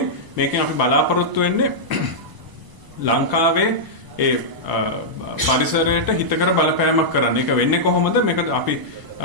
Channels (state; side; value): late; left; 1.0 ms